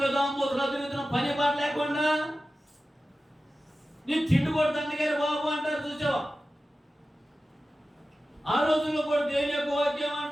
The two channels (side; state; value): both; normal; correlation 0.94